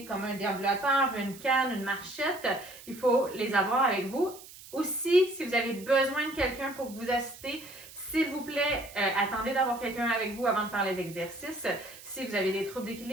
comme un déambulateur, une canne, une marchette, il faut les avoir avec vous. Aussi, si vous avez besoin de quelqu'un pour vous assister, s'il vous plaît, attendez d'avoir quelqu'un avec vous avant de faire les exercices. Si vous avez des troubles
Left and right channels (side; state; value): right; noise; hiss, 18 dB below the sound